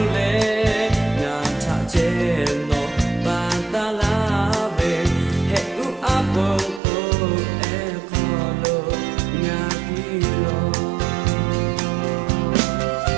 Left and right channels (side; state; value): left; drops out; at 6.8 s